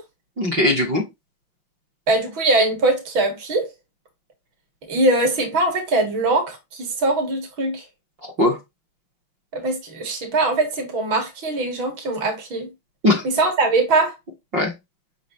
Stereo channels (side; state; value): left; late; 6.1 ms